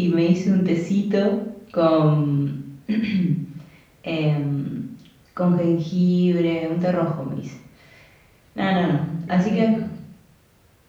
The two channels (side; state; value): both; identical; correlation 1.00